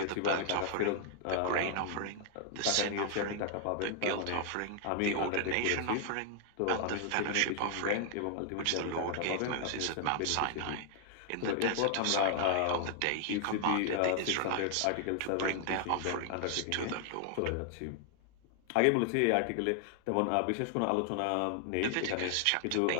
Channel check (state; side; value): different; both; correlation 0.00